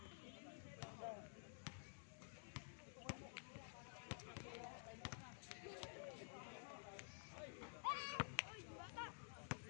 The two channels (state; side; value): silent; right; digital silence